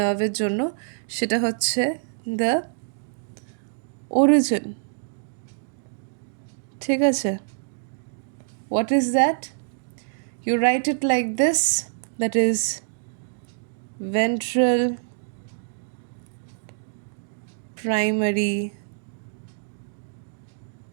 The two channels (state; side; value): silent; left; digital silence